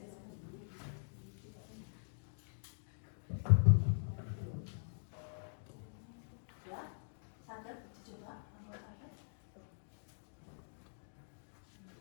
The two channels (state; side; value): silent; right; digital silence